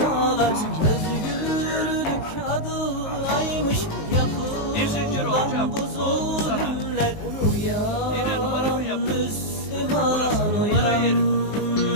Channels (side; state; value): right; late; 19 ms